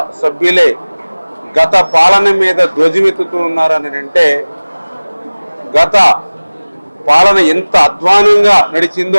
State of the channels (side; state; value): both; inverted; correlation -1.00